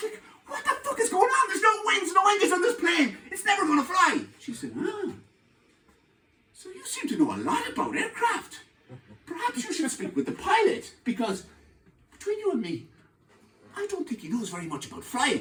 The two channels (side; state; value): both; identical; correlation 1.00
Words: like, what the fuck is going on? There's no wings, no engines on this plane. It's never going to fly. She said, so you seem to know a lot about aircraft. Perhaps you should speak with the pilot, because between you and me, I don't think he knows very much about